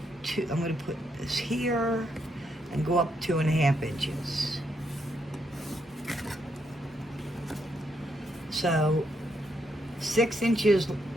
to, I'm going to put this here and go up 2.5 inches. So 6 inches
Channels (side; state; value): both; normal; correlation 0.78